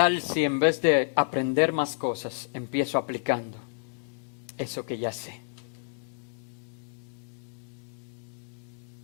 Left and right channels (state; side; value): silent; right; digital silence